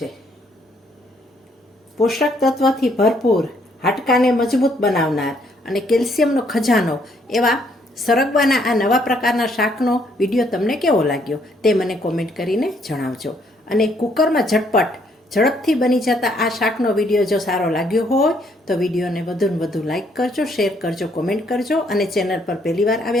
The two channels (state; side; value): normal; both; correlation 0.69